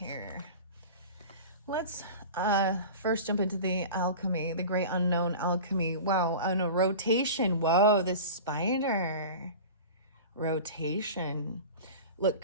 Let's first jump into the alchemy. The great unknown alchemy. Wow. Oh, no. Rotation. Whoa, the spider. Rotation. Look,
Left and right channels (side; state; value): both; inverted; correlation -0.35